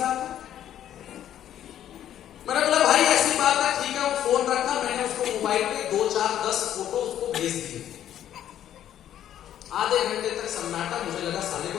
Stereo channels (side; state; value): right; quieter; 11.0 dB